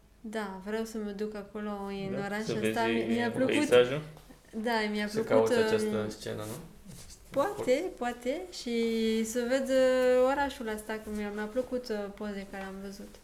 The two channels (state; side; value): identical; both; correlation 1.00